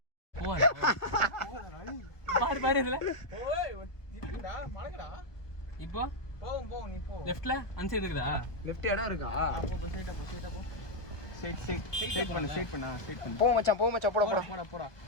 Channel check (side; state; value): right; late; 1.1 ms